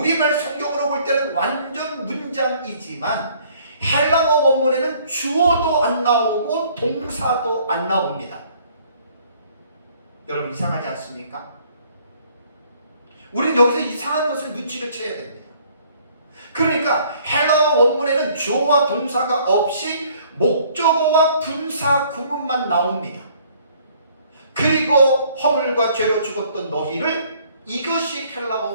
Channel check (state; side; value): inverted; both; correlation -0.60